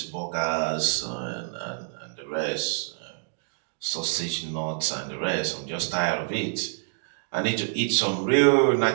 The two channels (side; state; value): left; silent; digital silence